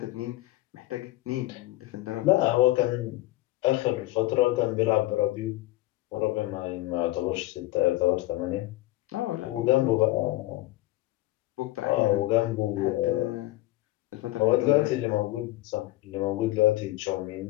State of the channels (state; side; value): quieter; right; 17.6 dB